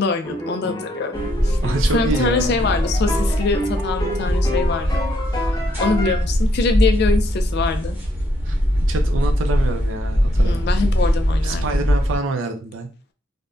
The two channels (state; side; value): normal; both; correlation 0.73